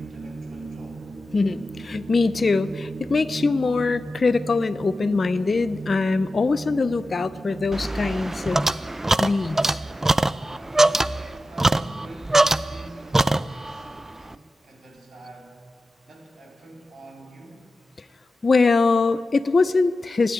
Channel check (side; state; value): both; normal; correlation 0.93